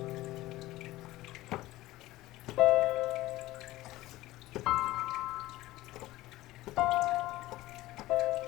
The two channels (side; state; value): right; quieter; 17.3 dB